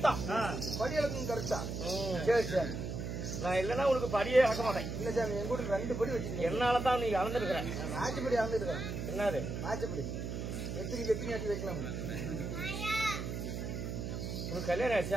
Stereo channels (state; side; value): noise; right; hum, 4 dB below the sound